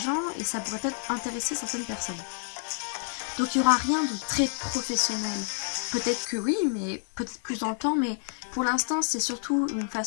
et ça pourrait peut-être intéresser certaines personnes. » Donc il n'y aura rien de très professionnel. Peut-être que oui, mais peut-être plus dans le temps, mais pour l'instant c'est surtout une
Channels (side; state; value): right; silent; 59 dB below the other